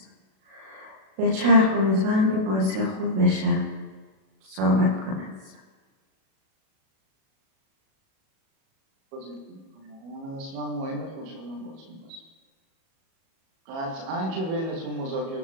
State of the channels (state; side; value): late; left; 37 ms